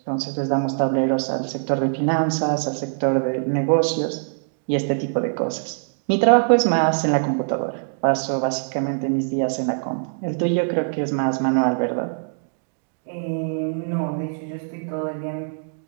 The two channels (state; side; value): silent; left; digital silence